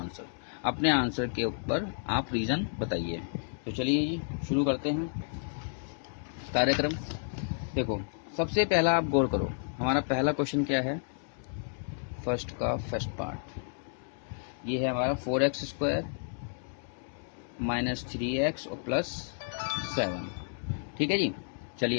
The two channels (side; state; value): right; silent; digital silence